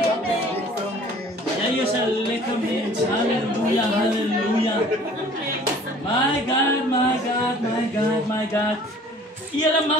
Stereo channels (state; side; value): normal; both; correlation 0.51